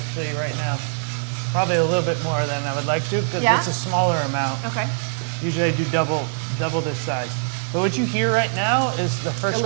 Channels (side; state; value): left; silent; digital silence